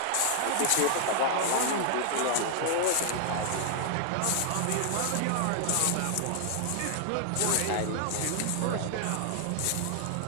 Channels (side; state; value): both; different; correlation 0.00